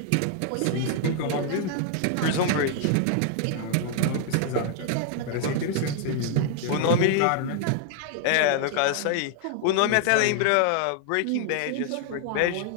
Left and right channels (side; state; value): both; different; correlation 0.00